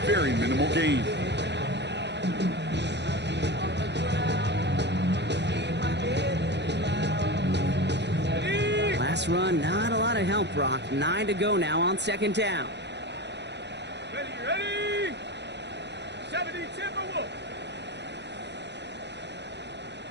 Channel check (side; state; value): left; late; 0.50 ms